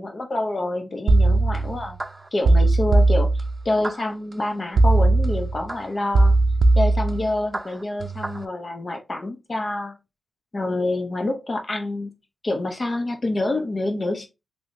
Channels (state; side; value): normal; both; correlation 0.92